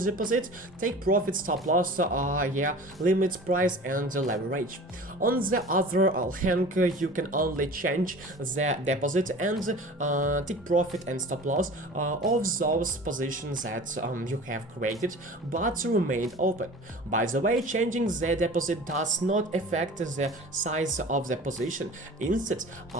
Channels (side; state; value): both; normal; correlation 0.40